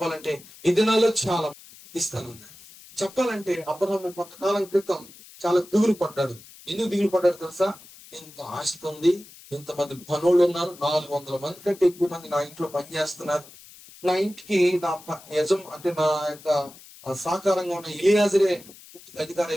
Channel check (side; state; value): left; noise; hiss, 21 dB below the sound